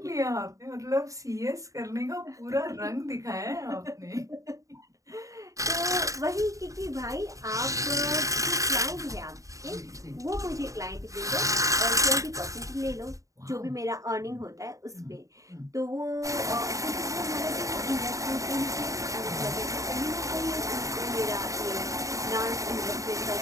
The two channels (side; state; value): left; late; 0.16 ms